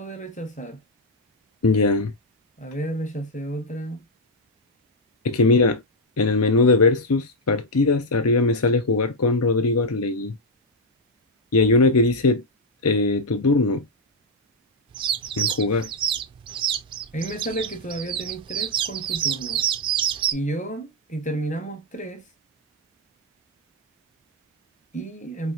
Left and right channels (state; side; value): normal; both; correlation -0.01